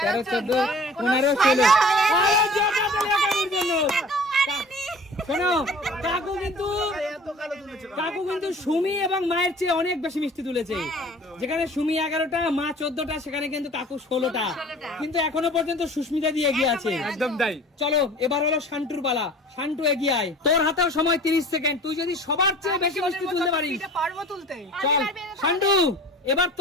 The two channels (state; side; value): normal; both; correlation 0.44